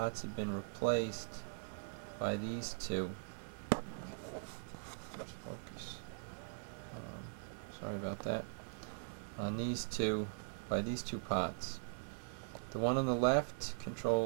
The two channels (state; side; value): silent; left; 50 dB below the other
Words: have been replaced by these two. Let's focus. Sorry about that. On these two, by these two pots. The one on the left